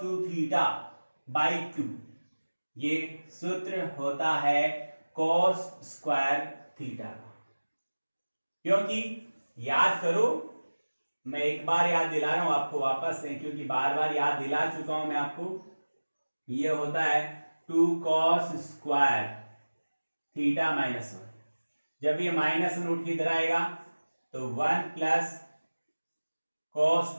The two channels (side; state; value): both; inverted; correlation -1.00